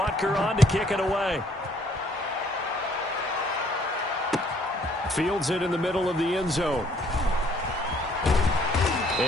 on to kick it away. Fields it in the middle of the end zone.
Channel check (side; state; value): both; normal; correlation 0.63